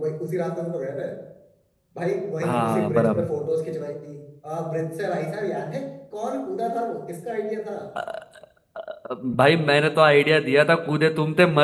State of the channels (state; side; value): identical; both; correlation 1.00